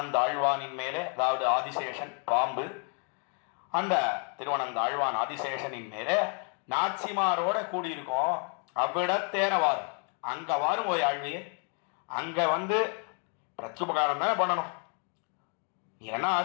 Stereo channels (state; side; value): quieter; right; 39.7 dB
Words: ஆழ்வானின் மேலே, அதாவது ஆதிசேஷன் பாம்பு, அந்த திருவனந்த ஆழ்வான் ஆதிசேஷனின் மேலே நாச்சிமாரோட கூடியிருக்கோம். அவ்விடத்தேர வாரும், அங்க வாரும் ஓய் ஆழ்வியே, அங்க வந்து பிரத்யுபகாரம் தானே பண்ணணும். நீ என்ன